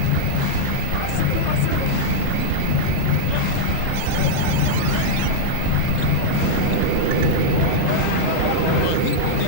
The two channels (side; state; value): both; different; correlation -0.01